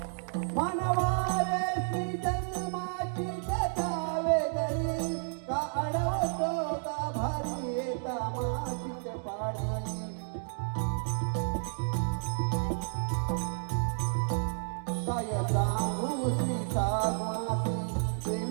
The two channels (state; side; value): silent; left; digital silence